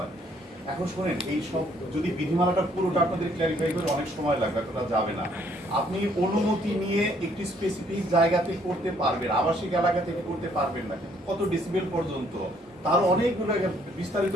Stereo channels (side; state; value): both; normal; correlation 0.66